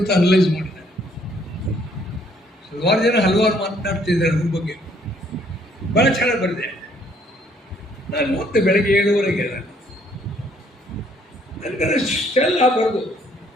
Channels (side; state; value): both; normal; correlation 0.65